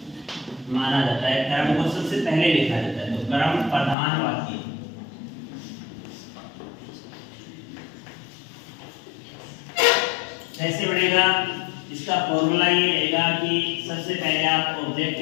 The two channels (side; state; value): right; drops out; at 4.0 s